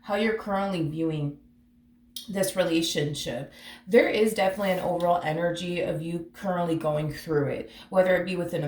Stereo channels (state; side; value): identical; both; correlation 1.00